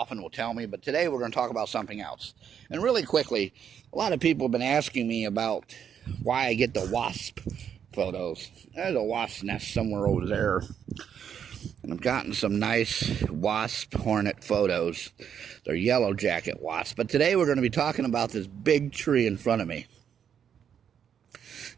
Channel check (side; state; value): left; quieter; 8.3 dB